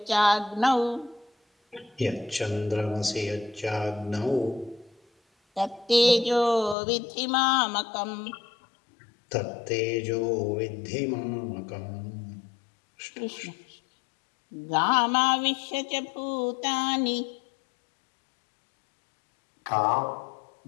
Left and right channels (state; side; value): drops out; right; at 6.8 s